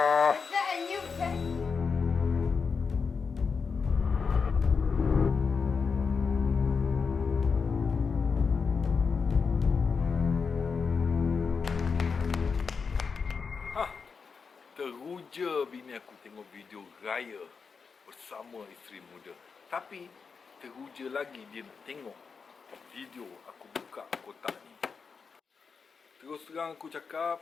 Is that a new vacuum? Teruja bini aku tengok video raya bersama isteri muda. Tapi teruja lagi dia nak tengok video aku buka kotak ni. Terus terang aku cakap,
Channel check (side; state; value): right; quieter; 5.4 dB